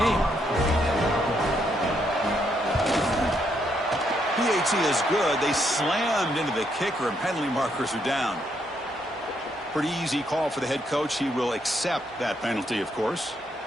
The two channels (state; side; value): normal; both; correlation 0.75